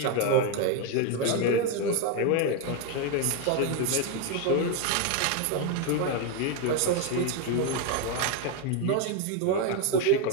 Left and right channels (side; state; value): both; different; correlation 0.02